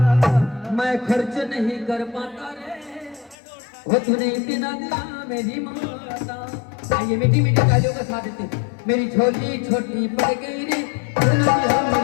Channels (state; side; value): drops out; right; at 3.4 s